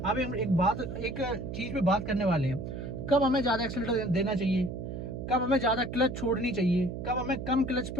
हम एक चीज पे बात करने वाले हैं, कब हमें ज्यादा एक्सीलरेटर देना चाहिए, कब हमें ज्यादा क्लच छोड़नी चाहिए, कब हमें कम क्लच पे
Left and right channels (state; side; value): noise; right; hum, 7 dB below the sound